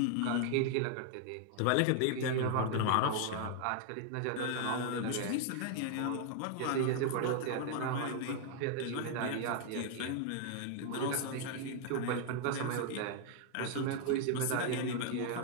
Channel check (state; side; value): different; both; correlation 0.00